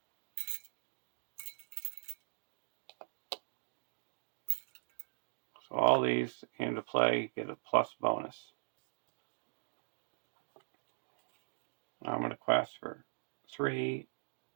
So all these came to play, get a plus bonus. Now I'm going to quest for 3,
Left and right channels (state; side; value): silent; left; digital silence